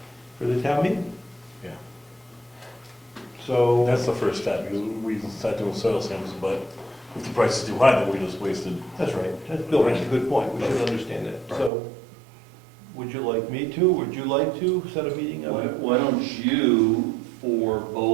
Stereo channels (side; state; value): left; drops out; at 11.7 s